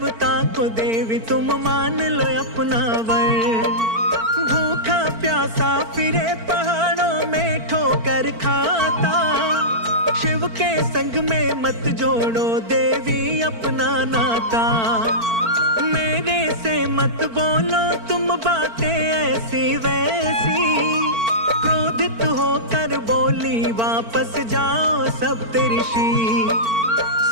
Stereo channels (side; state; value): left; late; 4.5 ms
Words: को देवी तुम मान लो अपना वर। भूखा प्यासा फिरे पहाड़ों में ठोकर खाता, शिव के संग में मत जोड़ो देवी अपना नाता। मेरे से मत बोलो तुम बातें ऐसी वैसी, क्रोधित होकर बोली वापस जाओ सप्तऋषि।